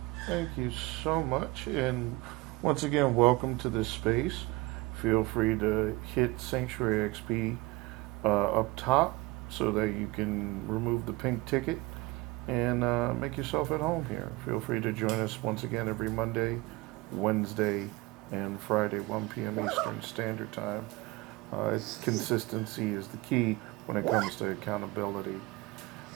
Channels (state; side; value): quieter; left; 21.6 dB